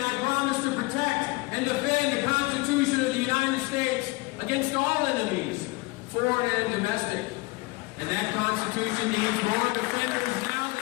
I promise to protect and defend the Constitution of the United States against all enemies, foreign and domestic. And that Constitution needs more defenders now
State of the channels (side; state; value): right; quieter; 23.7 dB